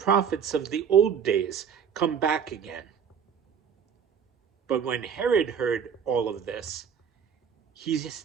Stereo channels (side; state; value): left; quieter; 7.4 dB